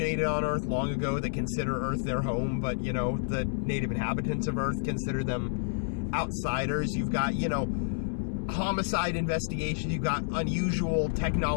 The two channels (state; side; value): silent; right; 58 dB below the other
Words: on Earth long ago that consider Earth their home, but, the native inhabitants of Earth consider them outsiders. You've got, homicide investigations. You've got unusual